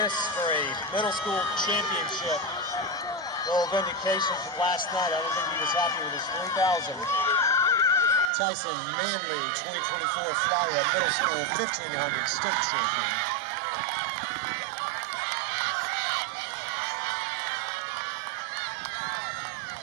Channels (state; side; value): drops out; left; at 8.3 s